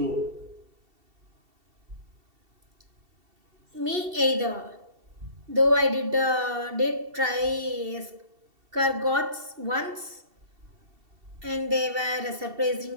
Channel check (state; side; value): late; left; 2.7 ms